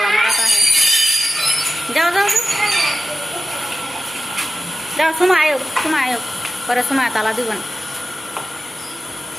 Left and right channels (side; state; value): both; normal; correlation 0.93